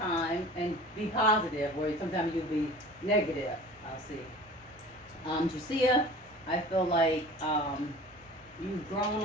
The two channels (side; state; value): both; normal; correlation 0.41